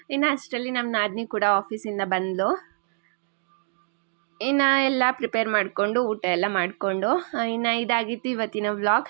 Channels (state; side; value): silent; left; digital silence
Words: ಇನ್ನು ಅಷ್ಟರಲ್ಲಿ ನಮ್ಮ ನಾದಿನಿ ಕೂಡ ಆಫೀಸಿಂದ ಬಂದಳು. ಇನ್ನು ಎಲ್ಲ ಪ್ರಿಪೇರ್ ಮಾಡಿಕೊಂಡು ಊಟ ಎಲ್ಲ ಮಾಡಿಕೊಂಡು ಇನ್ನು ಇದಾಗಿತ್ತು ಇವತ್ತಿನ